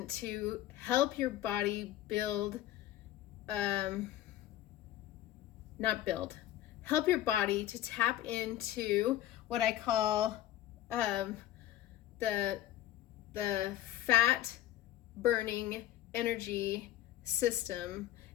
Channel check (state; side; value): quieter; right; 13.7 dB